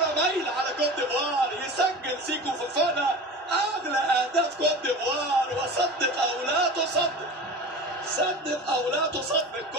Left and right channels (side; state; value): both; normal; correlation 0.33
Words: مايله على كوت ديفوار. يسجل سيكو فوفانا اغلى اهداف كوت ديفوار. وصدق او لا تصدق، صدق او لا تصدق،